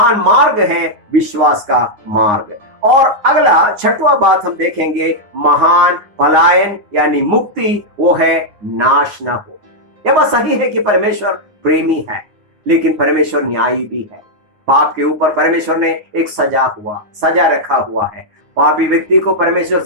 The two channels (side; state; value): left; late; 9.7 ms